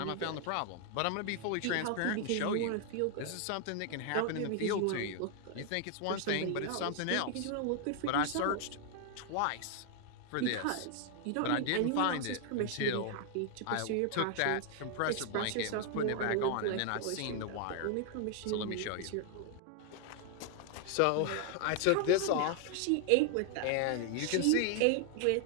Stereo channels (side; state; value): both; different; correlation 0.00